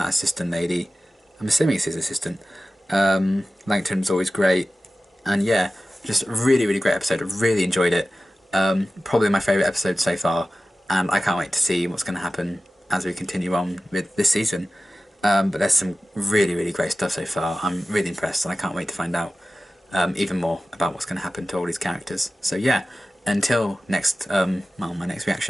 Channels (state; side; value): normal; both; correlation 0.96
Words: assistant lady. I'm assuming it's his assistant. Langton's always great. And yeah, just a really, really great episode. I really enjoyed it. Probably my favourite episode so far. And I can't wait to see what's going to happen as we continue on with this season. But there's some really, really great stuff so far. I'm really impressed, and I can't wait to find out even more about what's going to happen to all these characters. So yeah, until next, my next